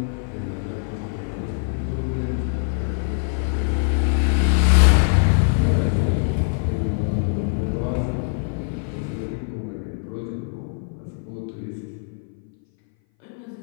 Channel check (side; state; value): right; silent; 59 dB below the other